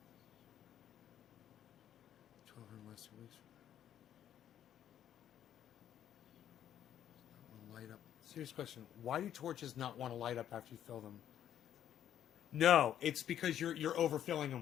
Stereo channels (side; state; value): right; quieter; 10.5 dB